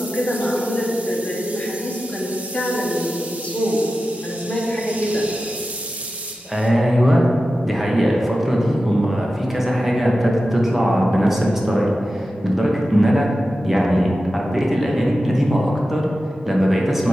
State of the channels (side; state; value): both; normal; correlation 0.93